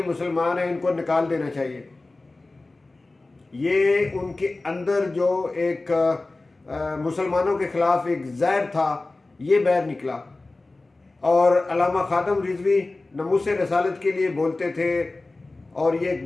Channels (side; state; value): right; quieter; 3.2 dB